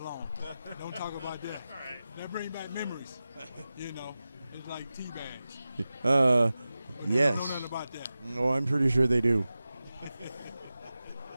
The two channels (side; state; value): both; inverted; correlation -0.95